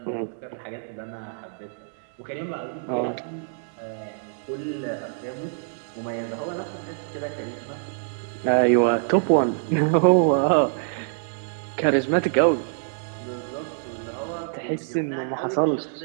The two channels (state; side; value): silent; left; digital silence